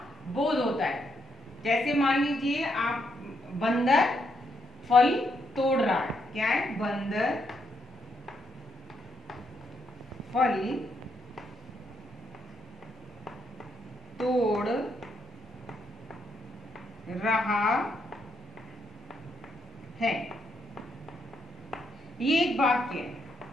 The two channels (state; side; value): normal; both; correlation 0.77